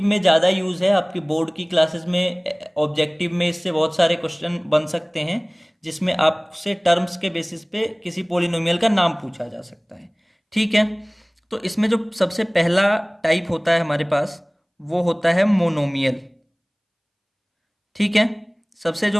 में ज़्यादा यूज़ है, आपकी बोर्ड की क्लासेस में ऑब्जेक्टिव में इससे बहुत सारे क्वेश्चन बन सकते हैं, जिसमें आपसे टर्म्स के बेसिस पे किसी पोलिनोमियल का नाम पूछा जा सकता है। ठीक है। तो इसमें जो सबसे पहला टाइप होता है हमारे पास, वो होता है मोनोमियल। ठीक है। सबसे जो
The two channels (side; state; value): both; identical; correlation 1.00